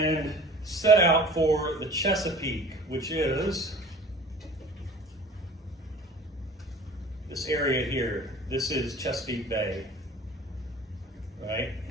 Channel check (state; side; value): normal; both; correlation 0.44